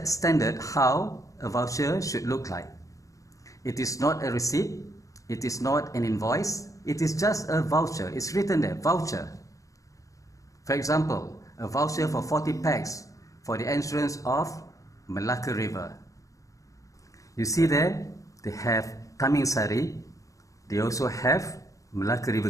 standard how a voucher should look like. It is not a receipt. It is not an invoice. It is just a voucher. It's written there, voucher. For example, a voucher for 40 packs for the entrance of Malacca River. You see there, they have Tamingsari. They also have Malacca River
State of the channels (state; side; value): late; right; 0.16 ms